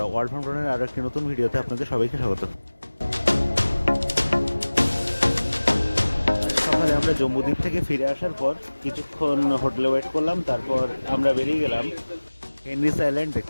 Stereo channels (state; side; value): inverted; both; correlation -1.00